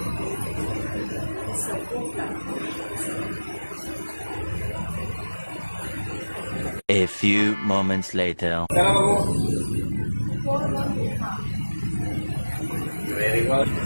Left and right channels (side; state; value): both; inverted; correlation -1.00